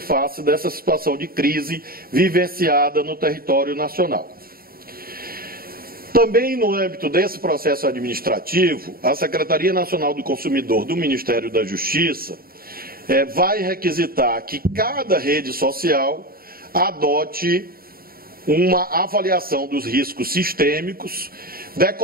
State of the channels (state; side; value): late; left; 0.43 ms